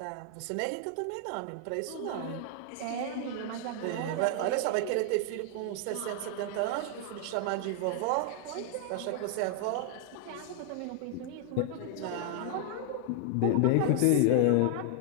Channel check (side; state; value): both; different; correlation 0.00